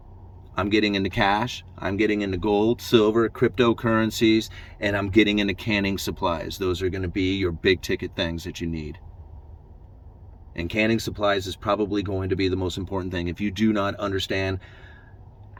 I'm getting into cash, I'm getting into gold, silver, cryptocurrencies, and I'm getting into canning supplies. Those are going to be your big ticket things that you need. And canning supplies is probably going to be the most important thing. If you do not understand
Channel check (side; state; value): both; identical; correlation 1.00